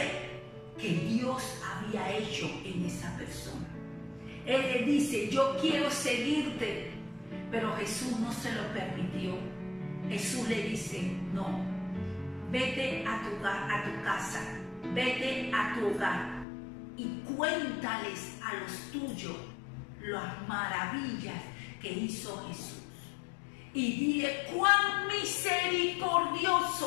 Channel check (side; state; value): right; drops out; at 16.4 s